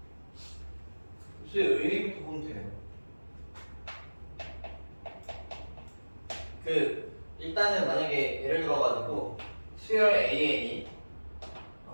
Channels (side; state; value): both; inverted; correlation -1.00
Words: 의미부터 보면 돼요. 일단은 만약에 예를 들어가지고 수열 AN이